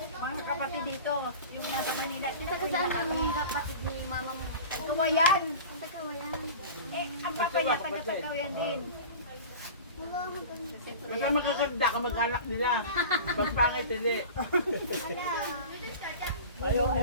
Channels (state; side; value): inverted; both; correlation -0.35